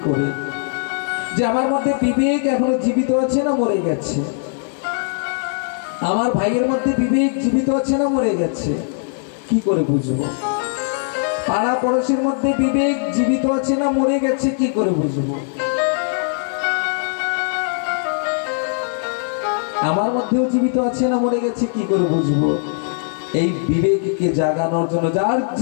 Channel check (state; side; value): silent; right; 66 dB below the other